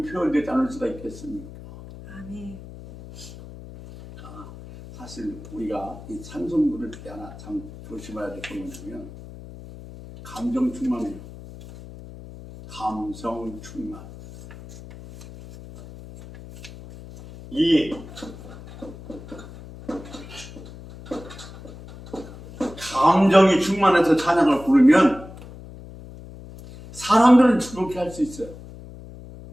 표현되지 않을 수가 있겠습니까? 아멘. 사실 우리가 이 찬송 부를 때 하나 참 조심해야 될 게 뭐냐면 감정 충만해요. 감성 충만. 이 감정이 충만해서 찬양을 부르면 사람들은 그렇게 할 수 있어요.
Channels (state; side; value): noise; left; hum, 16 dB below the sound